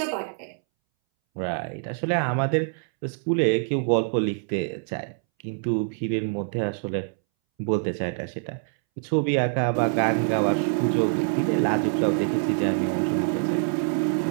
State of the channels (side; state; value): left; silent; 62 dB below the other